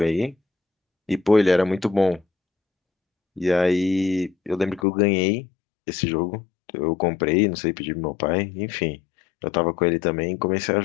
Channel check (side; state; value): right; drops out; at 4.9 s